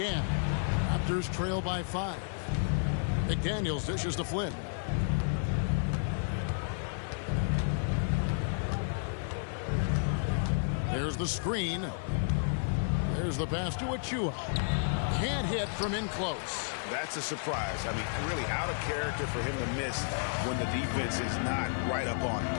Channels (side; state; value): right; silent; 57 dB below the other